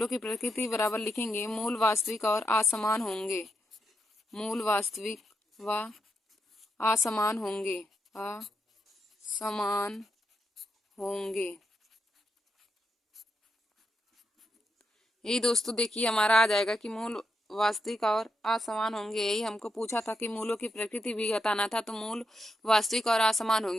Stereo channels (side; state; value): both; normal; correlation 0.84